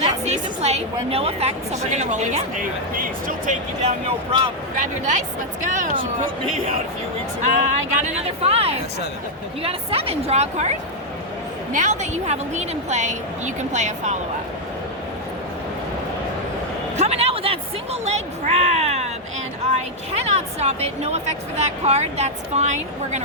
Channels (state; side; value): normal; both; correlation 0.00